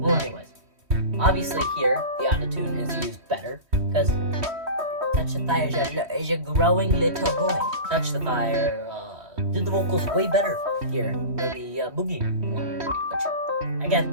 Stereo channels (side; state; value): left; late; 3.1 ms